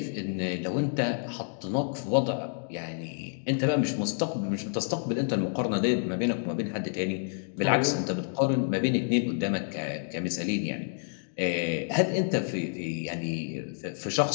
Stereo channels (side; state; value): right; silent; digital silence